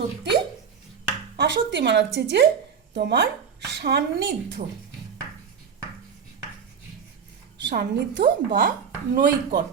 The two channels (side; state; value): left; quieter; 6.9 dB